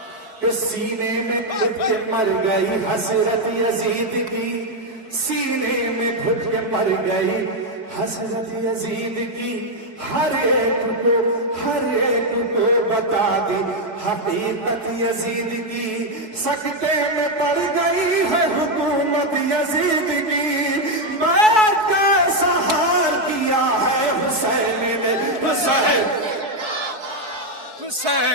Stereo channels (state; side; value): late; left; 4.6 ms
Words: کے سینے میں گھٹ کے مر گئی حسرت یزید کی، سینے میں گھٹ کے مر گئی حسرت یزید کی، ہر ایک کو بتا دی حقیقت یزید کی، سکتے میں پڑ گئی ہے حکومت یزید کی، بیعت کا اظہار کیا ہے حسین نے، حسین